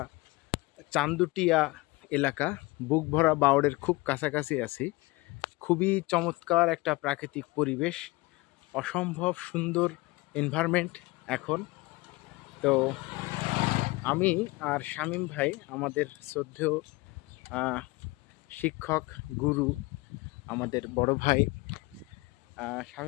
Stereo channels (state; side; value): quieter; right; 23.0 dB